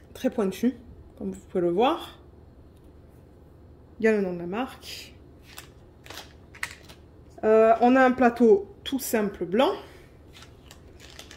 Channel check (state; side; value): identical; both; correlation 1.00